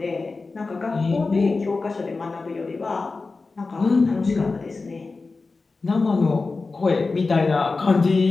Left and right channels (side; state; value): right; quieter; 3.9 dB